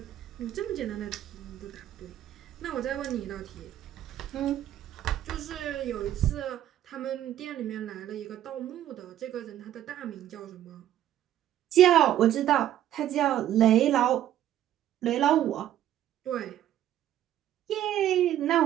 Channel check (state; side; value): quieter; left; 12.0 dB